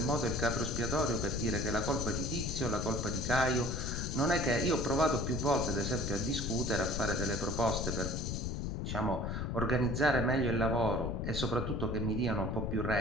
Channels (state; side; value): noise; left; rumble, 2 dB below the sound